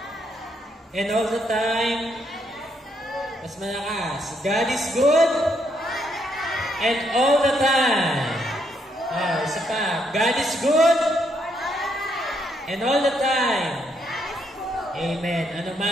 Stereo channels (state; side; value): normal; both; correlation 0.75